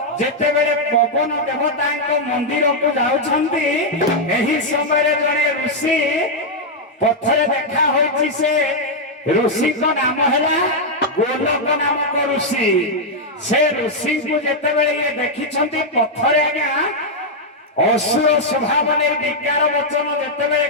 जेतेबेले पवन देवता मंदिर को जाउछंती एही समय जने ऋषि पथरे देखा होइछि से ऋषि को नाम हैला गोलक नामक ऋषि से ऋषि को जेतेबेले ये देखिछंती पथरे आज्ञा असुर स्वभाव ने विज्ञान वचन जेतेबेले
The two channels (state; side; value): normal; both; correlation -0.02